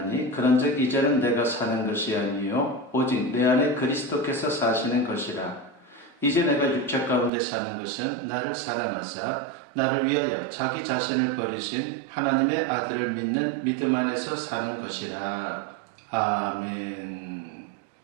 그런즉 이제는 내가 사는 것이 아니요 오직 내 안에 그리스도께서 사시는 것이라. 이제 내가 육체 가운데 사는 것은 나를 사랑하사 나를 위하여 자기 자신을 버리신 하나님의 아들을 믿는 믿음 안에서 사는 것이라. 아멘.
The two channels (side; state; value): left; drops out; at 7.3 s